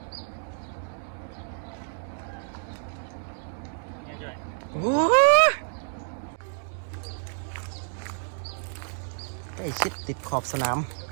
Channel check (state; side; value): silent; left; digital silence